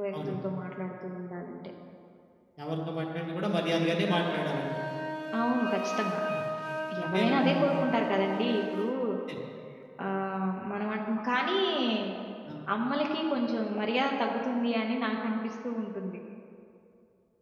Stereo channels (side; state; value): both; identical; correlation 1.00